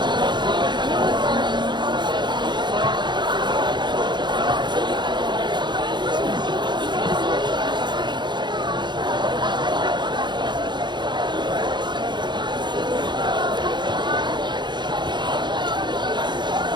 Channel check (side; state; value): left; late; 0.22 ms